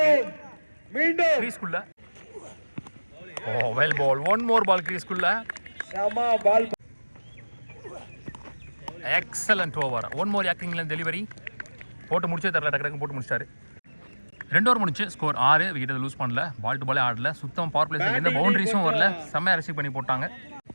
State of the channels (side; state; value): both; inverted; correlation -1.00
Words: மீண்டும் கிரீஸ்க்குள்ள. Oh, well ball. One more ball கிரீஸ்க்குள்ள. சமா ball. Excellent over. One more யாக்கிங்ல டெலிவரி போட்டு முடிச்சே தரல, டக்கு போட்டு முடிச்சிட்டாரு. 2 ஓவர் முடிச்சு ஸ்கோர் 6. விக்கெட் லூஸ் பண்ணல, பால் டு பாலே ஆடல, சுத்தம் பவர் பிளேஸ்ல எந்த பவுண்டரிஸும் வரல, செம்மையா ரிசீவ் பண்ணி போட்டாங்க.